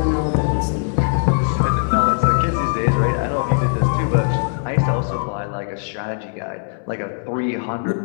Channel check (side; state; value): right; silent; digital silence